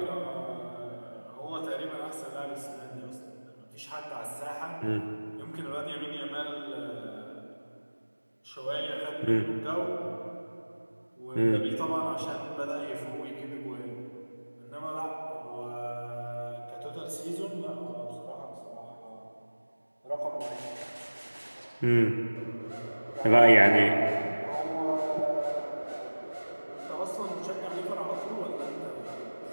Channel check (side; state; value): both; inverted; correlation -1.00